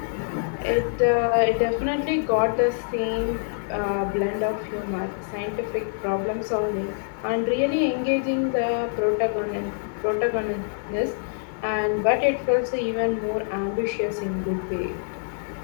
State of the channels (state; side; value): silent; right; digital silence